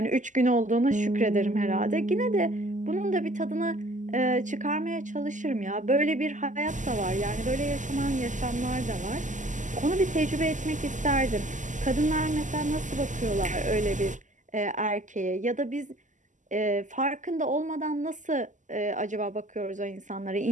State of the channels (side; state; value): left; late; 0.37 ms